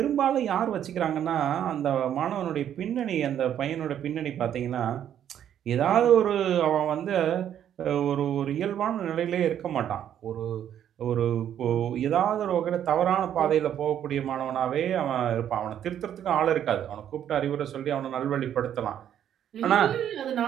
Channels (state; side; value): quieter; left; 10.1 dB